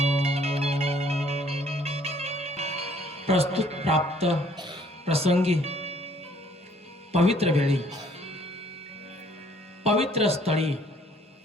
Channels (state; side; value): normal; both; correlation 0.61